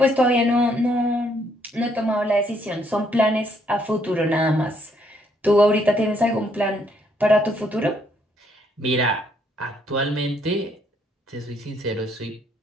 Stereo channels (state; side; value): normal; both; correlation 0.70